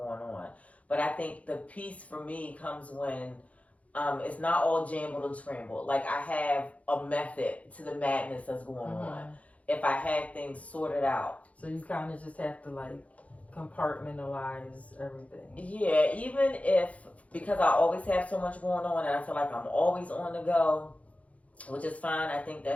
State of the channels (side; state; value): right; late; 0.066 ms